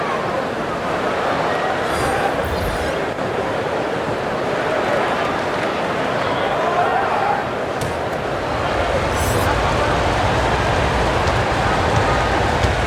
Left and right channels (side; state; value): both; identical; correlation 1.00